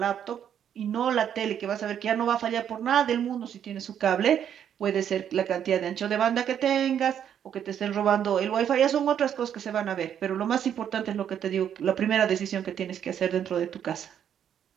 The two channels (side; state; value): left; quieter; 9.2 dB